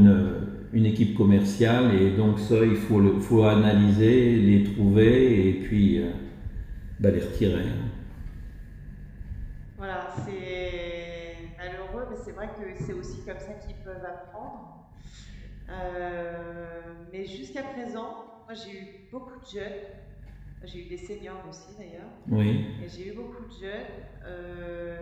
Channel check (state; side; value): identical; both; correlation 1.00